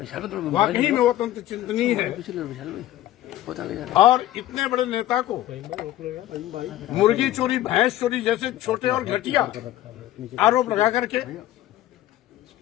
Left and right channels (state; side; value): quieter; right; 14.3 dB